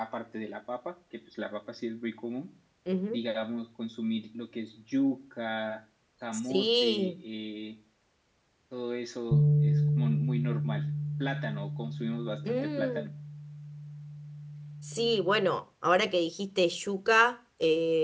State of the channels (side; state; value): both; identical; correlation 1.00